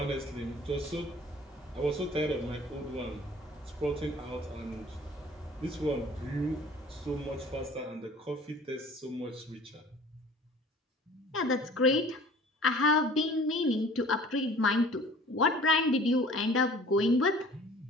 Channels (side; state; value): both; normal; correlation 0.48